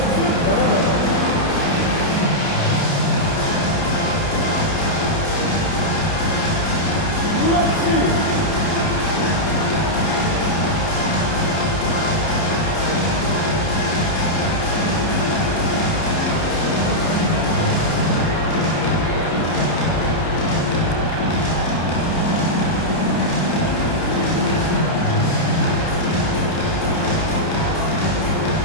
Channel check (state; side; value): late; right; 30 ms